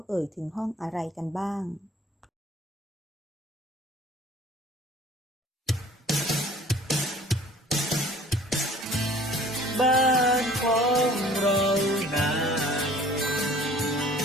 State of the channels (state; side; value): normal; both; correlation 0.50